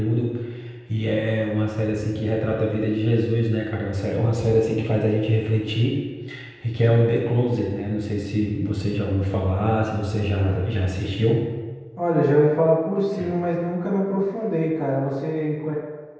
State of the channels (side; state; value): both; identical; correlation 1.00